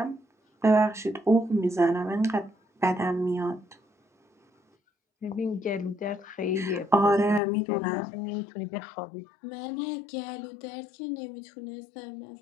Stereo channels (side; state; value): right; drops out; at 7.4 s